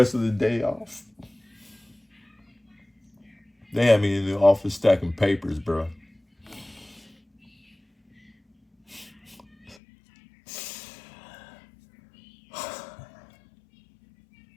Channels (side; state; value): right; drops out; at 9.8 s